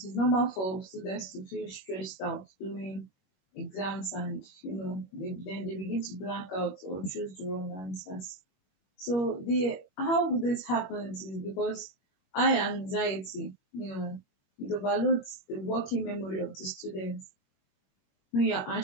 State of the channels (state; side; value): late; right; 21 ms